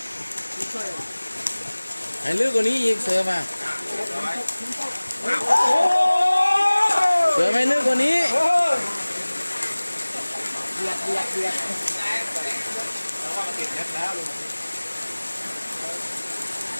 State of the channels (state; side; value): inverted; both; correlation -1.00